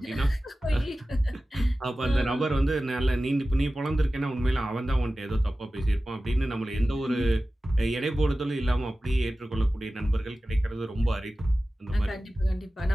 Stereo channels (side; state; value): both; normal; correlation 0.95